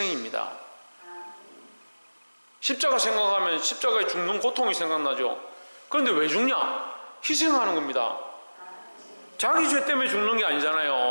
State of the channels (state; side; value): inverted; both; correlation -1.00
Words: 십자가 생각하면 십자가에 죽는 고통이 생각나죠. 그런데 왜 죽냐? 희생하는 겁니다. 자기 죄 때문에 죽는 게